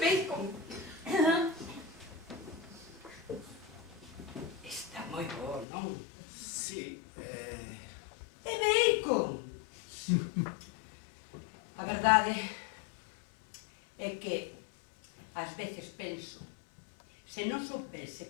Está moi bo, non? Sí, É bacon. A verdade é que ás veces penso, se non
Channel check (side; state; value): right; drops out; at 5.7 s